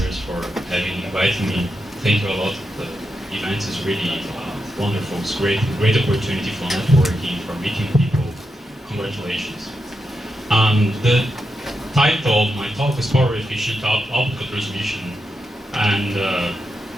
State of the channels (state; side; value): normal; both; correlation 0.86